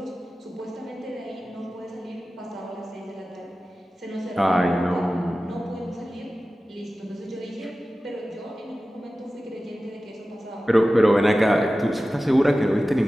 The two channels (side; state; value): both; normal; correlation 0.95